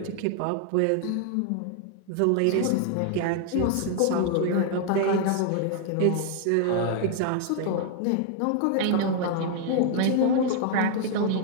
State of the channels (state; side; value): different; both; correlation 0.00